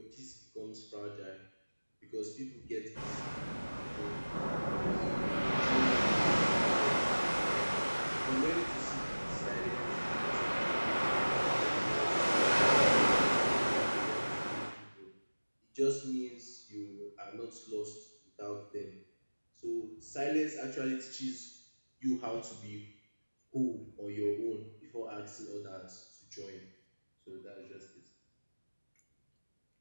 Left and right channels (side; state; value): both; inverted; correlation -1.00